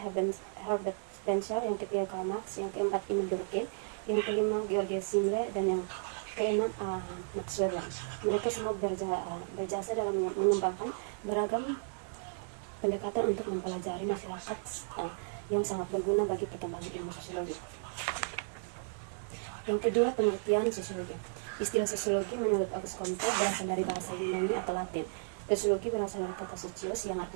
Spencer, yang ketiga Karl Marx, yang keempat Emile Durkheim, yang kelima Georges Simmel, dan yang keenam Max Weber. Mereka semua berjasa dalam mengembangkan beragam pendekatan untuk mempelajari masyarakat yang sangat berguna bagi perkembangan ilmu sosiologi. Yang kedua, pengertian sosiologi. Istilah sosiologi menurut Auguste Comte berasal dari bahasa Yunani atau Latin. Sosiologi berasal dari kata socios yang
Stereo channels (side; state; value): left; silent; digital silence